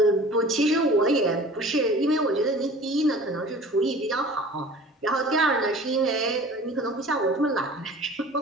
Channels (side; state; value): both; normal; correlation 0.44